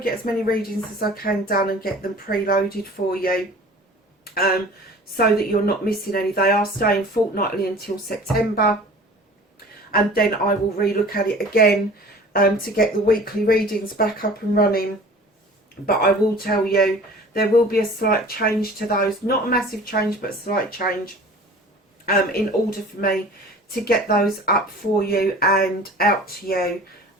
get as many readings as I can done and get them preloaded for you, so that you're not missing any. They are staying fortnightly until September. And then I will relook at it again to get the weekly readings back up and running. But I will tell you, there will be a slight change to those. Not a massive change, but a slight change in order for me to get those up for you and out to you,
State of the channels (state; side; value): normal; both; correlation 0.44